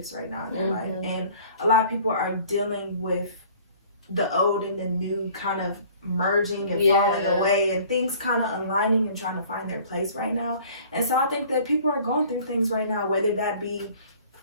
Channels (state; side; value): inverted; both; correlation -0.51